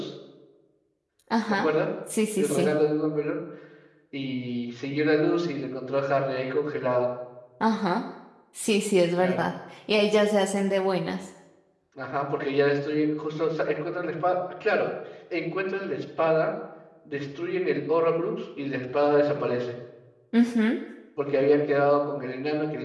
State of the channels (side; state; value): both; identical; correlation 1.00